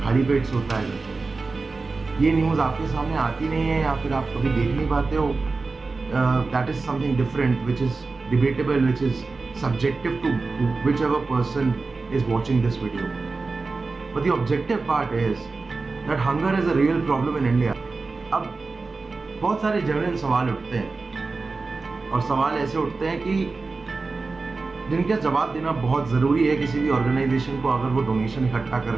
खाली पेट सोता है। ये न्यूज़ आपके सामने आती नहीं है या फिर आप कभी देख नहीं पाते हो। That is something different which is debatable, which is subjective to whichever person is watching this video. But the objective part is that hunger is a real problem in India. अब बहुत सारे जेन्युइन सवाल उठते हैं और सवाल ऐसे उठते हैं कि जिनका जवाब देना बहुत ज़रूरी है किसी भी ऑर्गेनाइजेशन को अगर वो डोनेशन इकट्ठा कर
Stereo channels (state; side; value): quieter; left; 3.9 dB